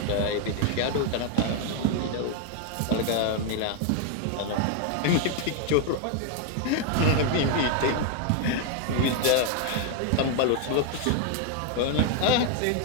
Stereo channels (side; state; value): both; different; correlation 0.00